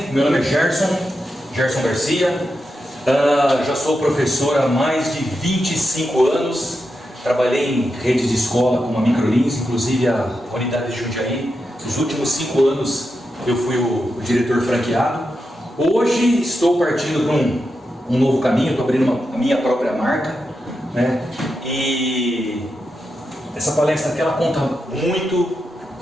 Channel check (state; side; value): normal; both; correlation 0.87